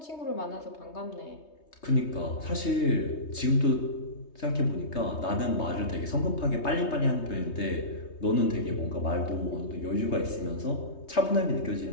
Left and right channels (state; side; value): late; right; 3.2 ms